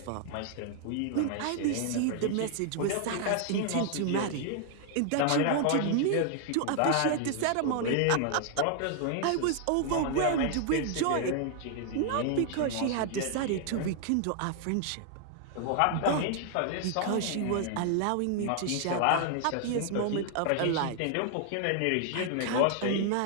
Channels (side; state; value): both; different; correlation 0.00